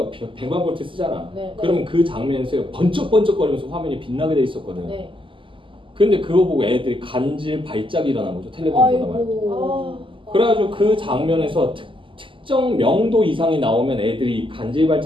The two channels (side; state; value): left; late; 0.25 ms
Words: 볼트 쓰잖아. 그러면 그 장면에서 번쩍번쩍거리면서 화면이 빛나게 돼 있었거든. 근데 그거 보고 애들이 간질 발작이 일어난 거죠. 텔레비전 보다 말고. 그래가지고 그 장면에서 특정 명도 이상이 나오면 애들이 간질